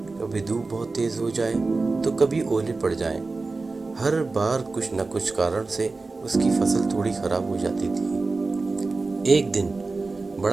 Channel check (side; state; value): left; quieter; 3.7 dB